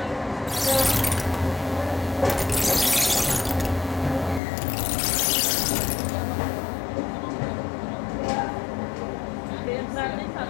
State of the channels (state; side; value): drops out; right; at 4.4 s